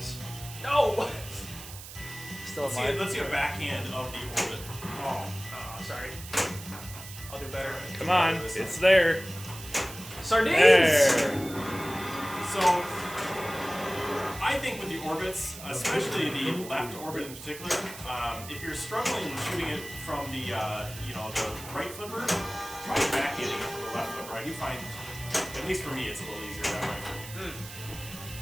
No! Still Let's see a backhand of the orbit. Oh, sorry. I'll do better. Come on, it's there. Sardines! There. So, I think with the orbits, especially the left orbit in particular, if you're struggling shooting it from the the right flipper, try back hitting it from the left flipper. I do find, at least for me, it's a little easier that way.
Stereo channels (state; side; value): noise; right; hiss, 13 dB below the sound